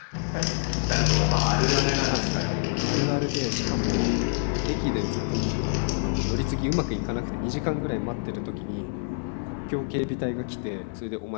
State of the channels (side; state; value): right; silent; digital silence